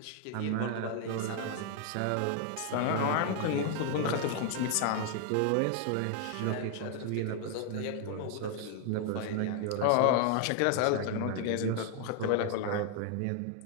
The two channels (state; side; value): different; both; correlation 0.00